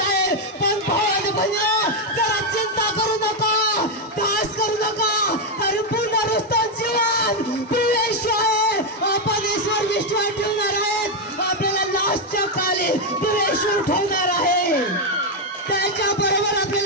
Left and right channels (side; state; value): both; normal; correlation 0.04